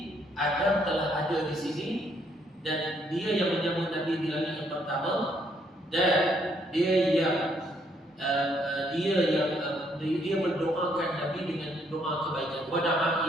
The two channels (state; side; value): normal; both; correlation 0.70